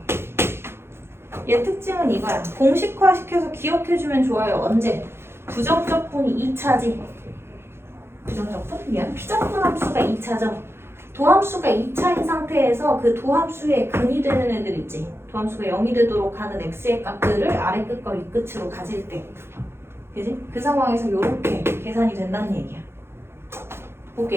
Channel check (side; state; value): left; late; 0.12 ms